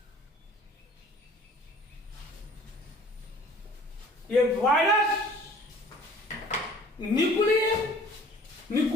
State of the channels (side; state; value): both; normal; correlation 0.50